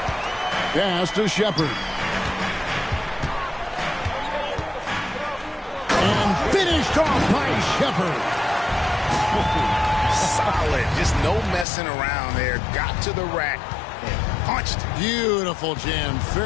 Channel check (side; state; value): right; drops out; at 11.7 s